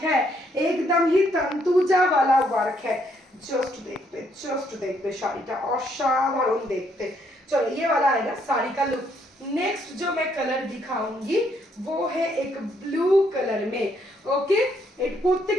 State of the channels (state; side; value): normal; both; correlation 0.71